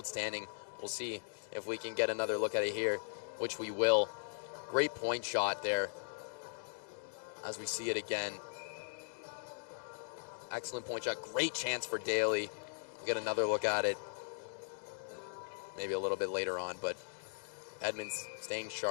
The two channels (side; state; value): right; silent; digital silence